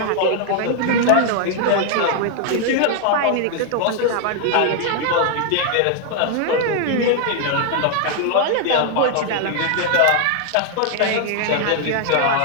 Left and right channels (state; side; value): different; both; correlation 0.00